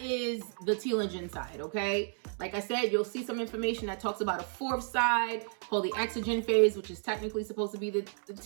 is the telogen side, okay? Like I said, you'll see some information that talks about a 4th side called the Catagen phase, which is technically supposed to be the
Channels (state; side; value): silent; left; 56 dB below the other